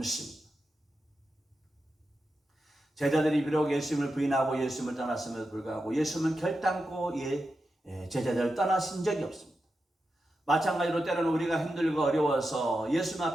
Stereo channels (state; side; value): normal; both; correlation 0.89